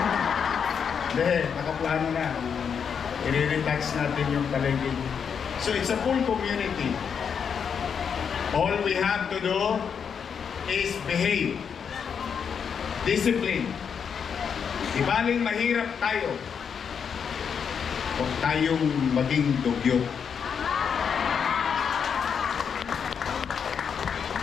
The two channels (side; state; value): right; quieter; 7.0 dB